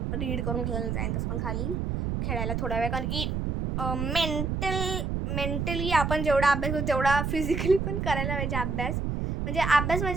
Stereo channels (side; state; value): right; noise; rumble, 1 dB below the sound